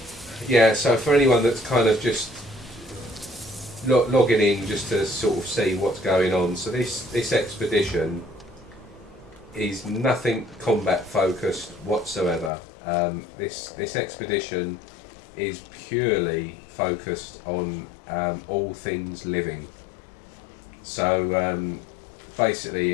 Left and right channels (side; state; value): right; drops out; at 12.5 s